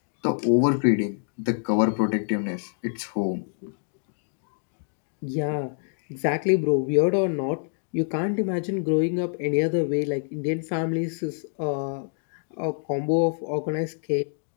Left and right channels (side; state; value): right; silent; 61 dB below the other